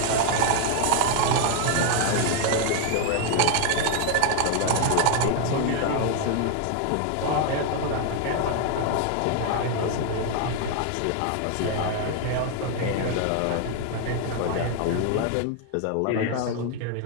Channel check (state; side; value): different; both; correlation 0.00